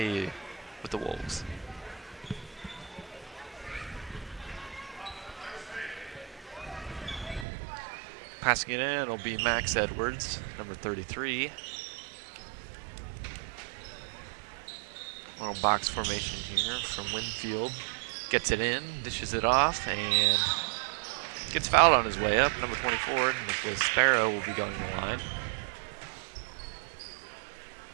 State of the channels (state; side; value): drops out; left; at 7.5 s